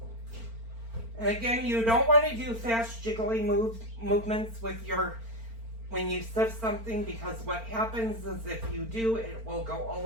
And again, you don't want to do fast jiggly movements with when you sift something, because what happens is if you do, it will go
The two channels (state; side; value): late; left; 4.4 ms